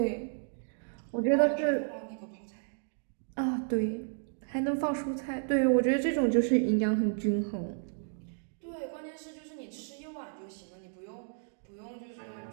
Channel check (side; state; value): left; silent; digital silence